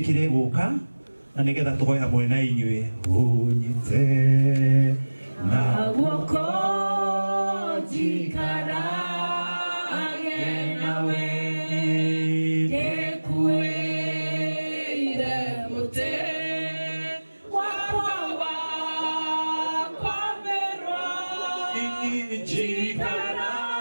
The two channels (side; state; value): both; inverted; correlation -1.00